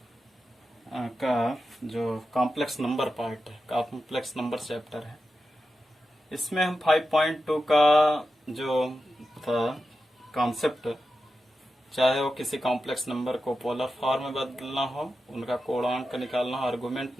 का जो कॉम्प्लेक्स नंबर पार्ट है, कॉम्प्लेक्स नंबर चैप्टर है, इसमें हम 5.2 का जो था कॉन्सेप्ट, चाहे वो किसी कॉम्प्लेक्स नंबर को पोलर फॉर्म में बदलना हो, उनका कोणांक निकालना हो, आर्गुमेंट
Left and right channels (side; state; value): both; normal; correlation 0.91